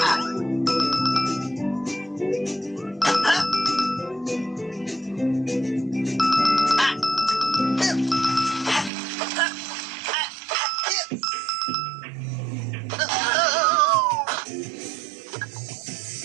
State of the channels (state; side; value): drops out; left; at 8.9 s